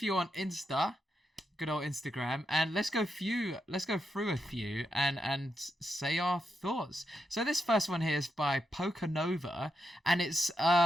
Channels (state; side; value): normal; both; correlation 0.84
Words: on Insta, good old Instagram, and let's go through a few and say our thoughts. So this first one here is by Pokanova, and it's